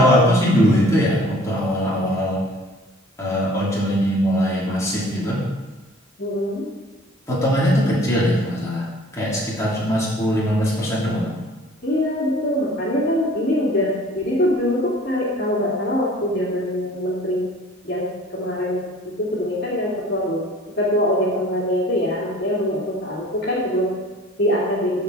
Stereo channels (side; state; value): both; normal; correlation 0.50